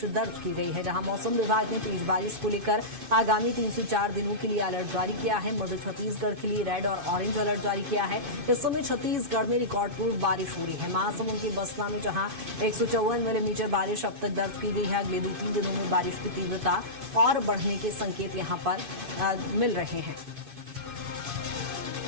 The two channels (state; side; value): late; left; 2.5 ms